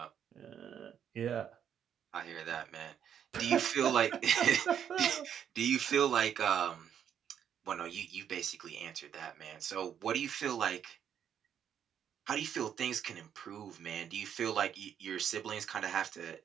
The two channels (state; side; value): quieter; left; 8.9 dB